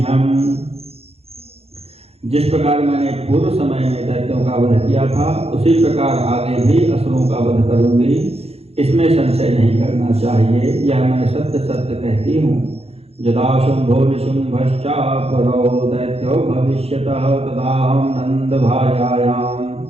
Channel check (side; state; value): left; late; 0.29 ms